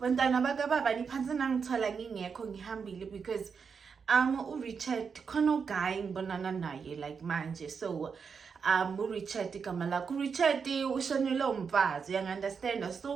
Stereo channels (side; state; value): left; quieter; 6.0 dB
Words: bakababa niphansi nangithola ngingekho ngihambile because uRichard khona uguy ngibonana naye like manje so uRichard igama lakho uRichard ushonile umfazi you understand